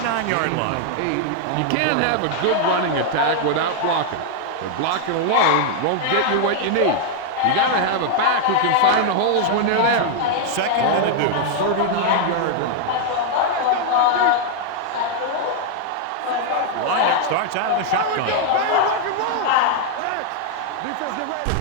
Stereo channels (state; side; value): different; both; correlation -0.01